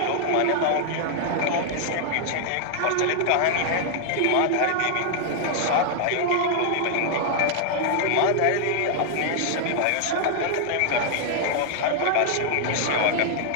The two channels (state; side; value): different; both; correlation -0.01